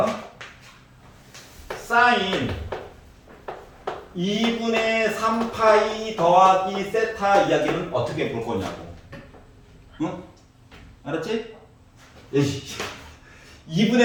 사인 2분의 3파이 더하기 세타 이야기는 어떻게 볼 거냐고. 알았지?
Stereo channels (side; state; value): both; identical; correlation 1.00